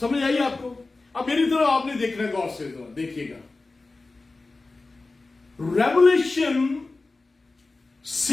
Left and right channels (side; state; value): right; quieter; 3.5 dB